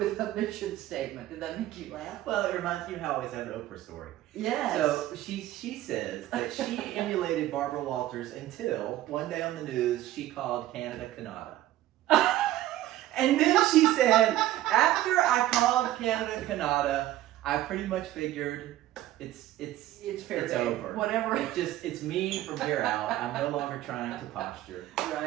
a mission statement. Did that make you laugh? Well, it reminds me how I always have an Oprah story. Yes. So she says that she emulated Barbara Walters until one day on the news she called Canada Canada. And then she said, after I called Canada Canada, I pretty much figured it's fair it's game. over. Whatever. It's me from here out. I'm no longer trying to posture.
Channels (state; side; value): quieter; left; 14.5 dB